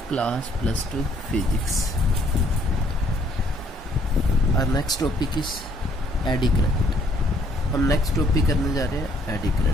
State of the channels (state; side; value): normal; both; correlation 0.65